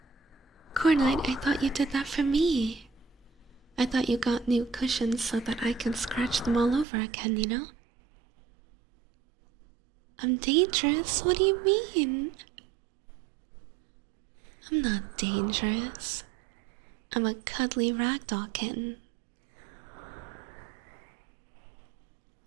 Cornite, I thought you did that for me. I thought you got new cushions so that I can scratch them all over again, you know? I'm dangerous? What do you mean? I'm not dangerous. I'm a cuddly ragdoll kitten.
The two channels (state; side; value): drops out; left; at 6.9 s